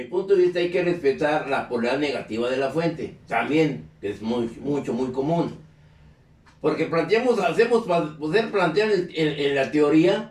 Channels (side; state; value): both; identical; correlation 1.00